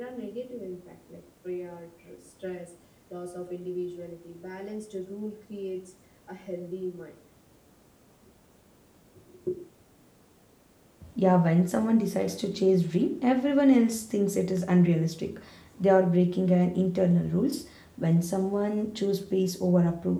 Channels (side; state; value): both; identical; correlation 1.00